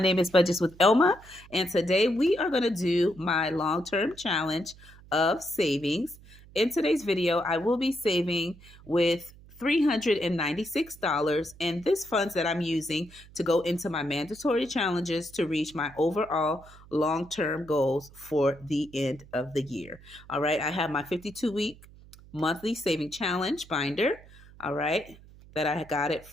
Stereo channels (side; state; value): right; noise; hum, 22 dB below the sound